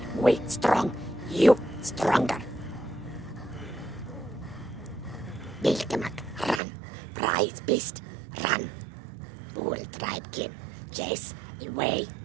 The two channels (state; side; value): drops out; left; at 6.6 s